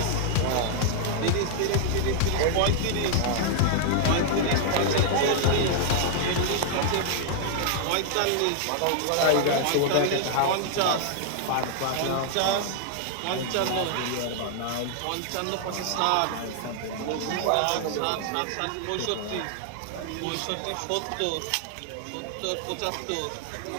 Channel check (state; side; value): different; both; correlation 0.00